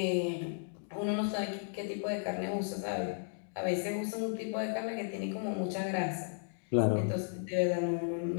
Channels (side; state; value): right; silent; digital silence